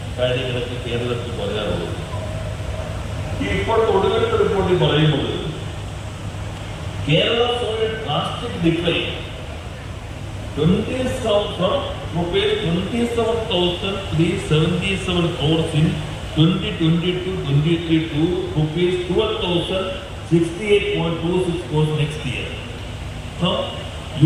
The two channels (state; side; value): identical; both; correlation 1.00